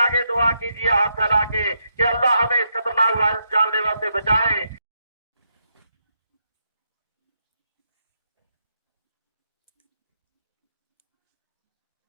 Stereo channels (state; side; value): inverted; both; correlation -0.81